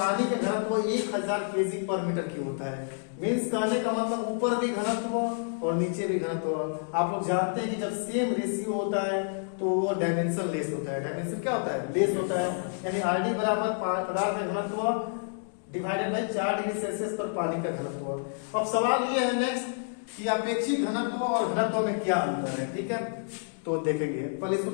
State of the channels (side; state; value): right; silent; digital silence